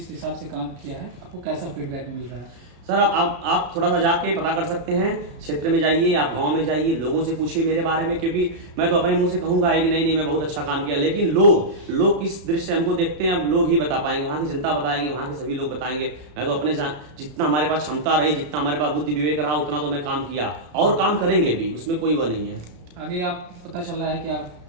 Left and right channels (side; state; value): left; late; 33 ms